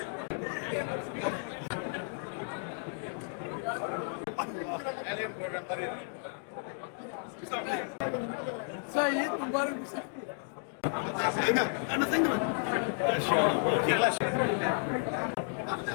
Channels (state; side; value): silent; right; 56 dB below the other